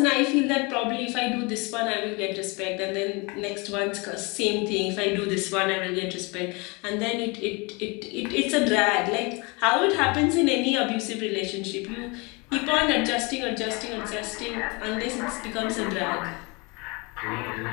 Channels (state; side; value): quieter; right; 28.3 dB